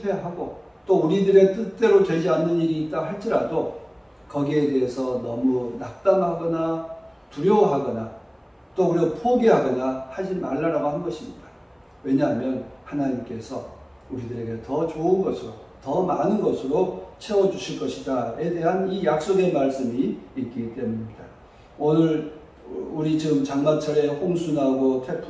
또 우리들의 뜻대로 되지 않는 일이 있다 할지라도 거기에 대해서 너무 낙담하거나 두려워하거나 또 우리가 포기하거나 하지 말라라고 한 것입니다. 왜냐하면 하나님께서 우리들에게 더 좋은 것으로, 더 많은 것으로 채워주실 것이다에 대한 이 약속의 말씀이 있기 때문입니다. 오늘 우리 지금 장마철에 홍수 나고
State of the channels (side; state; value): both; identical; correlation 1.00